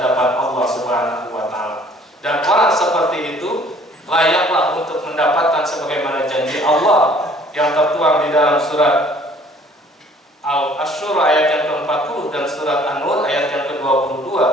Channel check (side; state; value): both; normal; correlation 0.55